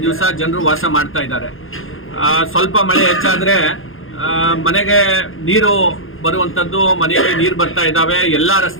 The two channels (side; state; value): right; late; 0.60 ms